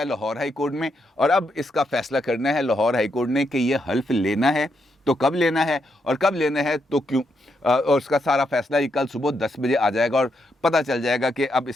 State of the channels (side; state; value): both; normal; correlation 0.80